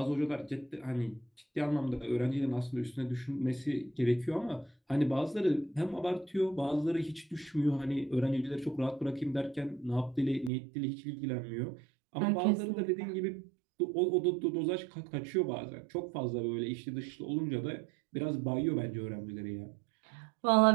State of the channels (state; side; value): drops out; left; at 10.5 s